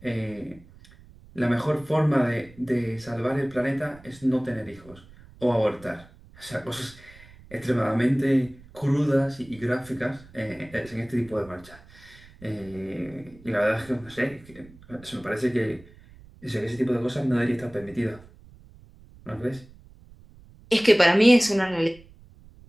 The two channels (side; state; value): right; noise; rumble, 23 dB below the sound